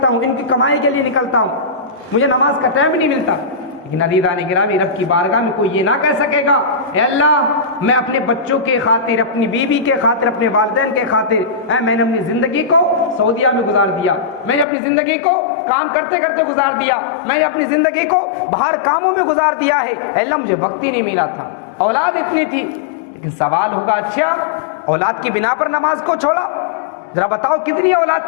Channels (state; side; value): drops out; right; at 14.7 s